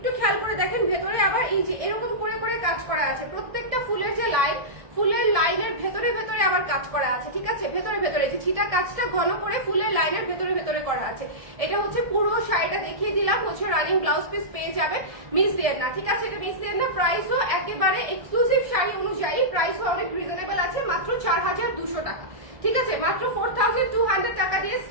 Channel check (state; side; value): late; left; 1.7 ms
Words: খেয়াল করে দেখেন ভেতরে আবার এই যে এরকম করে করে কাজ করা আছে, প্রত্যেকটা ফুলের যে লাইন, ফুলের লাইনের ভেতরে ভেতরে আবার কাজ করা আছে। ঠিক আছে, ভেতরে ভেতরে যে ছিটা কাজটা ঘন করে ফুলের লাইনের ভেতরে ভেতরে করা আছে। এটা হচ্ছে পুরো শাড়িটা দেখিয়ে দিলাম, হচ্ছে রানিং ব্লাউজ পিস পেয়ে যাবে, মিস দেন না। ঠিক আছে, এটা মিস দেন না। প্রাইসও একেবারে এক্সক্লুসিভ শাড়ি অনুযায়ী প্রাইসও অনেক রিজনেবল আছে, মাত্র 4200 টাকা। ঠিক আছে, মাত্র 4200 টাকা দিয়ে